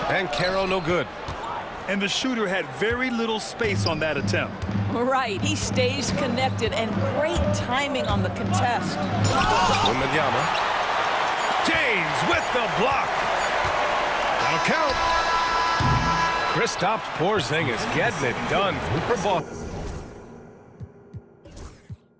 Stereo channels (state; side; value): identical; both; correlation 1.00